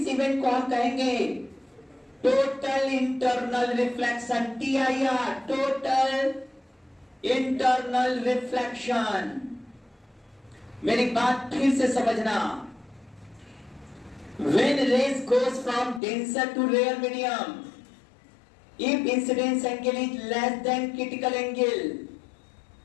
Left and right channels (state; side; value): drops out; right; at 16.0 s